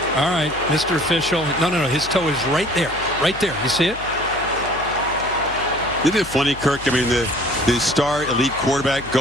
All right, Mr. Official. No. His toe is right there. Right there. You see it? Isn't it funny, Kirk? I mean, the star elite quarterback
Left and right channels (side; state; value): left; noise; hum, 16 dB below the sound